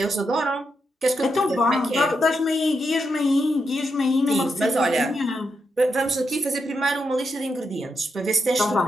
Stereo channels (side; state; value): both; normal; correlation 0.83